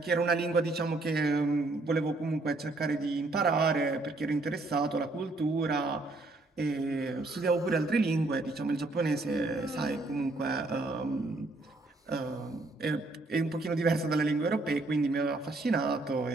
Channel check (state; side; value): quieter; left; 3.1 dB